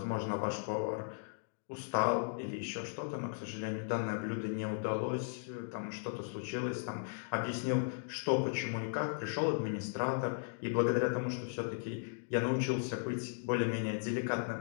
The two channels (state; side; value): silent; right; digital silence